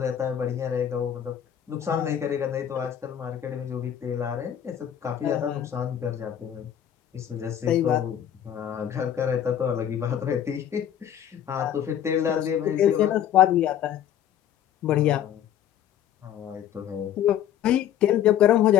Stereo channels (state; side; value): quieter; right; 10.1 dB